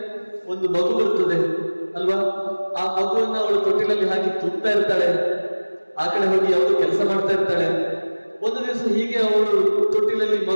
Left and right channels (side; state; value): both; inverted; correlation -1.00